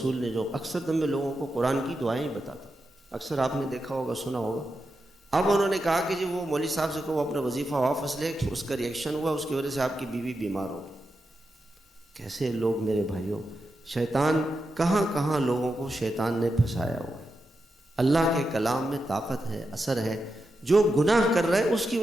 نے، جو اکثر دم میں لوگوں کو قرآن کی دعائیں ہی بتاتا، اکثر آپ نے دیکھا ہوگا، سنا ہوگا۔ اب انہوں نے کہا کہ جی وہ مولوی صاحب سے کہو اپنا وظیفہ واپس لے، اس کا ریئیکشن ہوا، اس کی وجہ سے آپ کی بیوی بیمار ہوگی۔ کیسے لوگ میرے بھائیوں، شیطان کہاں کہاں لوگوں کو شیطان نے پھنسایا ہوا ہے۔ اللہ کے کلام میں طاقت ہے، اثر ہے۔ جو گناہ کر رہا ہے اس کی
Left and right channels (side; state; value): both; normal; correlation 0.88